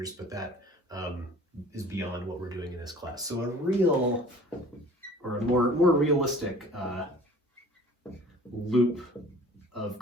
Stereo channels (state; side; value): normal; both; correlation 0.48